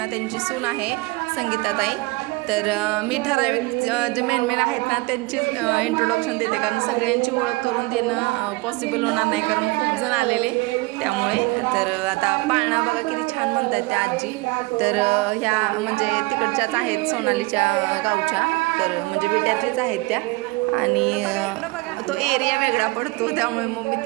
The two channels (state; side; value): quieter; left; 23.8 dB